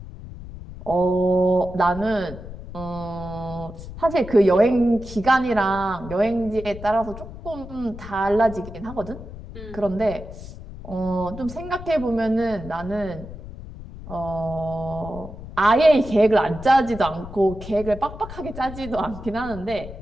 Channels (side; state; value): left; noise; rumble, 13 dB below the sound